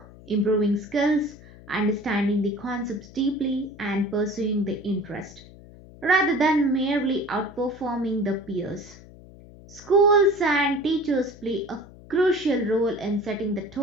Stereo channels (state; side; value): noise; left; hum, 20 dB below the sound